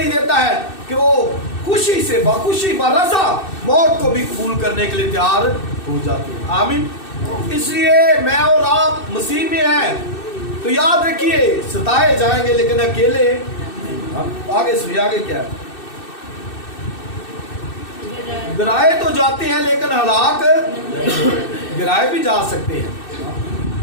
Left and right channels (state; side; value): late; right; 2.6 ms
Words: دیتا ہے کہ وہ خوشی سے بخوشی برضا موت کو بھی قبول کرنے کے لیے تیار ہو جاتے ہیں. آمین. اس لیے میں اور آپ مسیح میں ہیں تو یاد رکھیے ستائے جائیں گے لیکن اکیلے. آگے سنیے آگے کیا ہے. گرائے تو جاتے ہیں لیکن ہلاک، گرائے بھی جا سکتے ہیں.